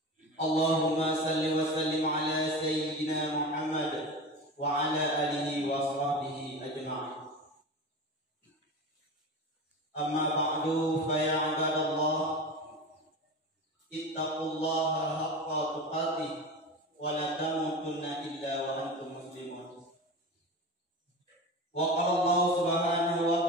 Allahumma salli wa sallim ala sayyidina Muhammad wa ala alihi wa sahbihi ajma'in. Amma ba'du, fa ya ibadallah, ittaqullaha haqqa tuqatih wa la tamutunna illa wa antum muslimun. Wa qala Allah subhanahu wa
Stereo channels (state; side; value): normal; both; correlation 0.28